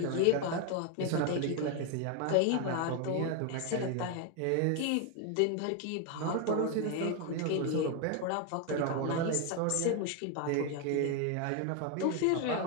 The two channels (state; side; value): different; both; correlation 0.01